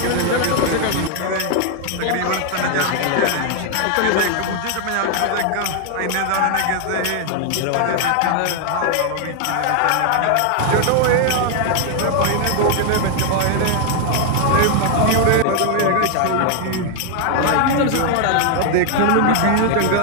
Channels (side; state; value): both; different; correlation 0.00